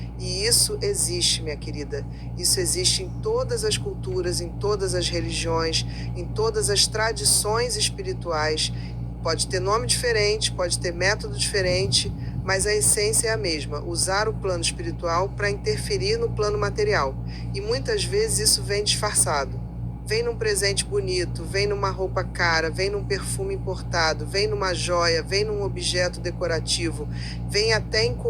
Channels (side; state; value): both; identical; correlation 1.00